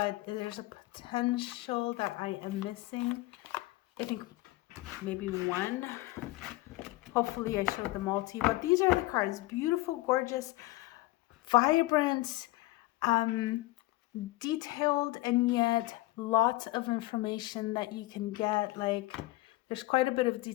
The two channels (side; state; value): right; quieter; 20.0 dB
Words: there's a potential that I am missing. I think maybe one. Hopefully I showed them all to you. But these are the cards. Beautiful, gorgeous, vibrant, detailed, and yet lots of information that you can get. Like, there's quite a bit of